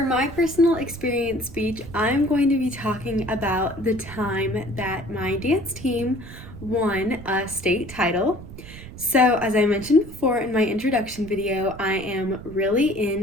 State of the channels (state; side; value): noise; right; rumble, 15 dB below the sound